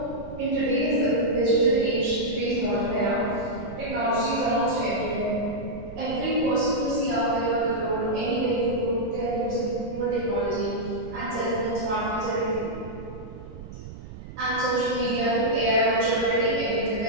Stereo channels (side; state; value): right; noise; rumble, 14 dB below the sound